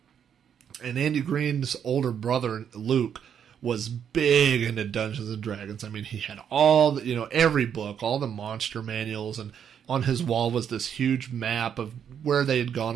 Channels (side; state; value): left; quieter; 8.4 dB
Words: And Andy Green's older brother, Luke, was big into Dungeons and Dragons. He had all every book, all the monster manuals, and on his wall was this huge map of where they had gone